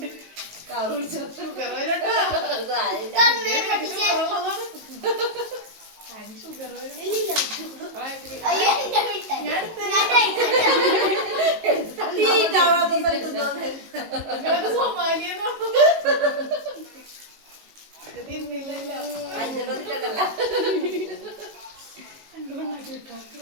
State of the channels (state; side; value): late; left; 19 ms